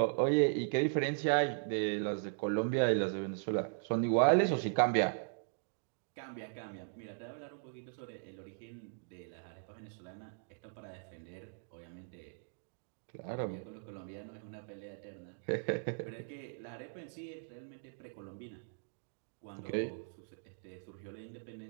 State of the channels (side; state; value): left; silent; digital silence